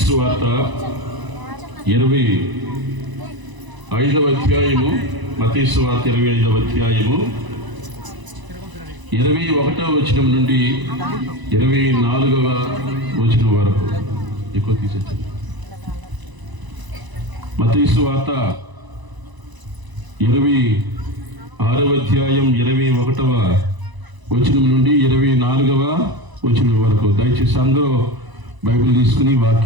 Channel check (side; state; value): left; late; 1.0 ms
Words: సువార్త 25వ అధ్యాయము. మత్తయి సువార్త 25వ అధ్యాయము 21వ వచనం నుండి 24వ వచనం వరకు ఎక్కువ తీసేచ్చండి. మత్తయి సువార్త 26వ అధ్యాయం 21వ వచనం నుండి 24వ వచనం వరకు. దయచేసి అందరూ బైబిల్ తీసుకుని